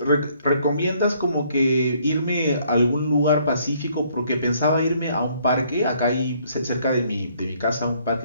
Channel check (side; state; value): both; inverted; correlation -0.65